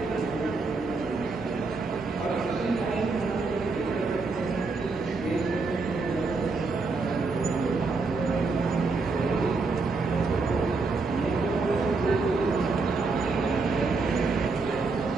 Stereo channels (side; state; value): left; quieter; 4.0 dB